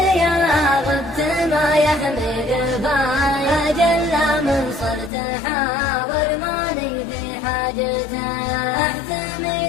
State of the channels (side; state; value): right; drops out; at 5.1 s